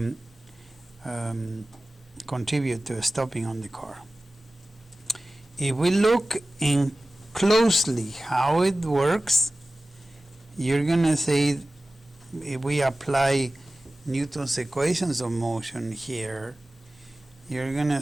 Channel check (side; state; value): both; normal; correlation 0.97